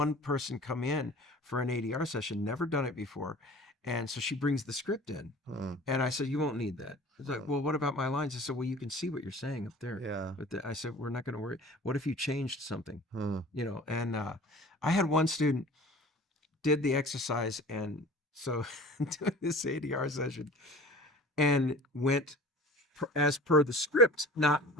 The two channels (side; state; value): both; normal; correlation 0.43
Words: person come in for an ADR session, never done it before. And so she brings the script in. Huh. And I said, you won't need that. It's like, well, what about my lines? I said, well, you can see what you're saying up there. Yeah. But I said, we're not going to worry. What if you changed something? Huh. You know, and I had one student did the exercise. And so doing this ADR session and went as per the script, not